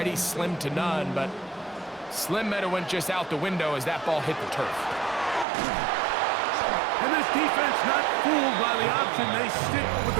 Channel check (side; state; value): left; drops out; at 5.5 s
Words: slim to none, but slim might have went just out the window as that ball hit the turf. And this defense not fooled by the option. They stick with